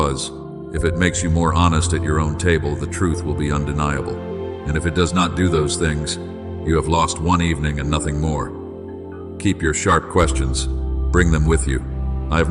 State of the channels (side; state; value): both; identical; correlation 1.00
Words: If it makes you more honest at your own table, the truth will be undeniable. And if it does not do those things, you have lost one evening and nothing more. Keep your sharp questions. Bring them with you. I